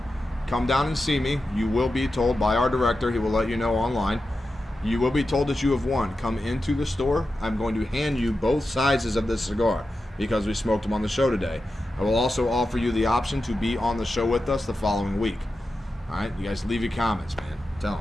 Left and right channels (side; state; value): both; normal; correlation 0.91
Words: come down and see me. You will be told by our director. He will let you know online. You will be told that you have won. Come into the store. I'm going to hand you both sizes of this cigar because we smoked them on the show today. I will also offer you the option to be on the show with us the following week. All right, you guys leave your comments, man. Tell them,